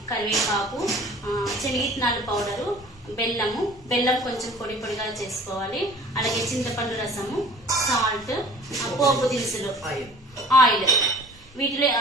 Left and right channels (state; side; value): normal; both; correlation 0.46